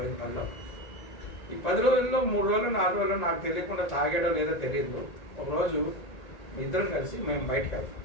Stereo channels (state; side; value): late; right; 1.8 ms